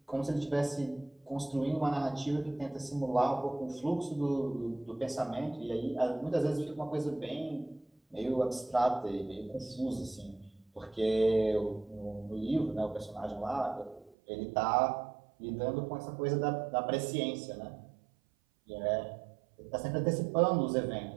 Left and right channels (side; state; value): left; drops out; at 14.2 s